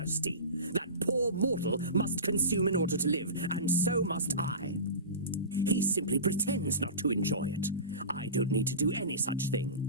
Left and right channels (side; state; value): both; inverted; correlation -0.30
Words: That poor mortal must consume in order to live, and so must I. He simply pretends not to enjoy it. I don't need to do any such thing.